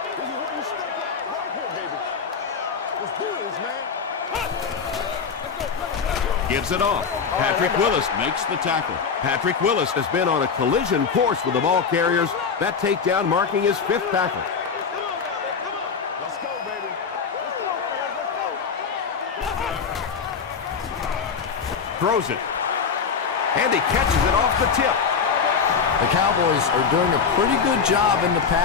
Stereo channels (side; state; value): right; quieter; 6.0 dB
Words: Gives it off. Patrick Willis makes the tackle. Patrick Willis has been on a collision course with the ball carriers. That takedown marking his 5th tackle. Let's go, baby. Throws it. And he catches it off the tip. The Cowboys are doing a pretty good job in the